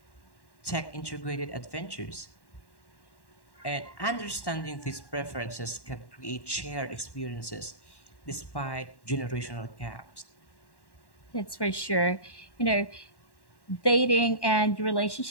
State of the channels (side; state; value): right; late; 1.1 ms